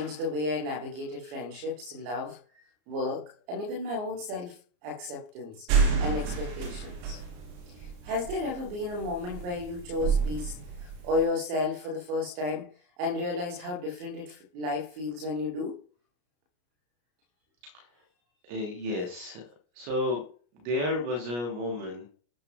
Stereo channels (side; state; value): left; late; 33 ms